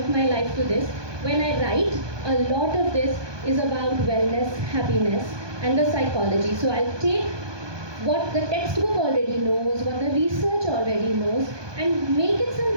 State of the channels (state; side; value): late; left; 1.2 ms